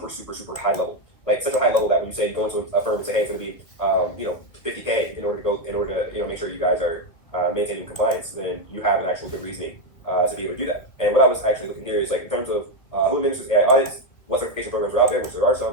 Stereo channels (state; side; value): late; right; 2.2 ms